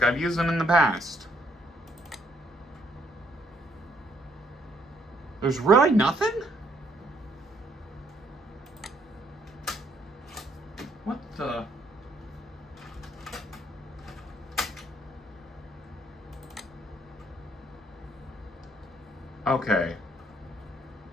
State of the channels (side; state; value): both; normal; correlation 0.69